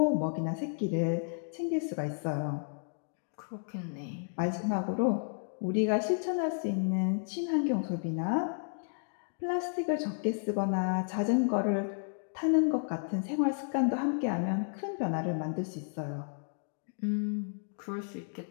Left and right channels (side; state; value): right; silent; digital silence